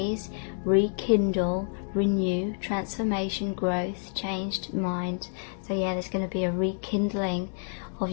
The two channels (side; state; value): right; silent; 59 dB below the other